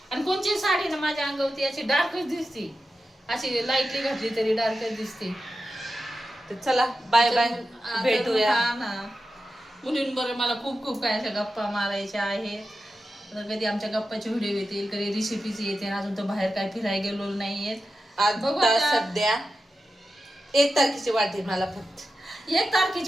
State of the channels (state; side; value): normal; both; correlation 0.91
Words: आणि कोणची साडी ना माझ्या अंगावरती अशी डार्कच दिसते, अशी लाईटली घातली तरी डार्कच दिसते. तर चला बाय बाय, भेटूया ना. मुलींबरोबर मला खूप काय अशा गप्पा मारायच्या आहेत. कधी आमच्या गप्पाचे व्हिडिओ येतील, कधी रेसिपीज येते. अजून तर बाहेर काय फिरायला गेलो नाहीये. आता सध्या 1 तारखेची वाट आहे मला, फक्त 1